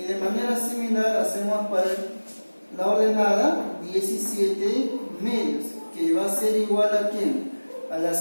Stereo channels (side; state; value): both; inverted; correlation -1.00